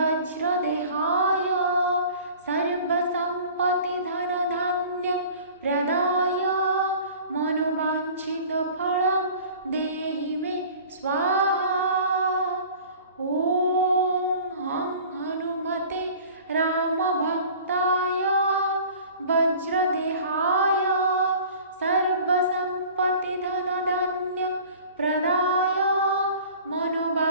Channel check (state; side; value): inverted; both; correlation -0.45